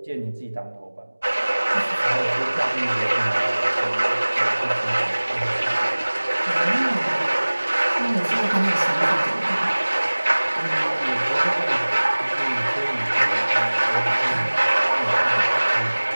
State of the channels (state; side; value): inverted; both; correlation -1.00